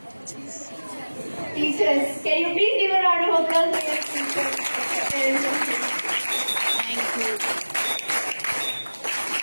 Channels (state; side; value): inverted; both; correlation -1.00